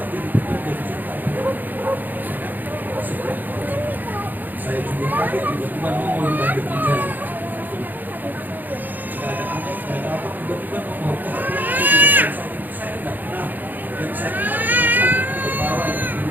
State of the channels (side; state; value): left; late; 0.086 ms